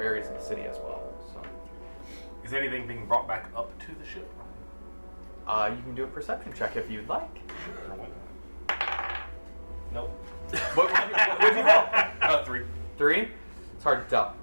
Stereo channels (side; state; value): both; inverted; correlation -1.00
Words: of the city as well. So, is anything being brought back up to the ship? You can do a perception check if you'd like. Sure. Nope. What would you roll? 3. 3? It's hard to tell.